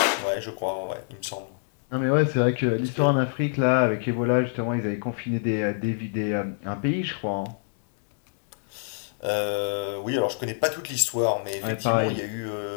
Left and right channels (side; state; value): right; silent; digital silence